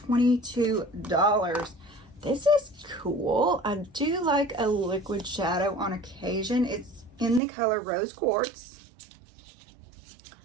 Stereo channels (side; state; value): left; drops out; at 7.4 s